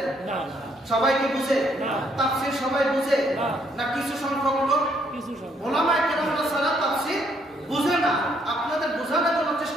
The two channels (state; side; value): normal; both; correlation 0.70